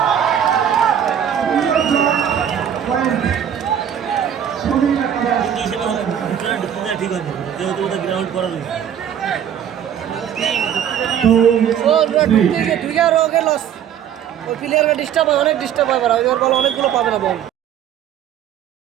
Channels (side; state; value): left; quieter; 9.3 dB